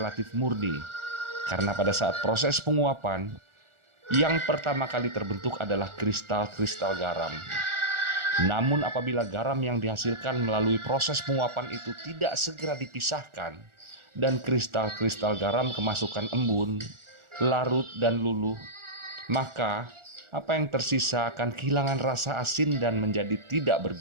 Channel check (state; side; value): late; left; 1.4 ms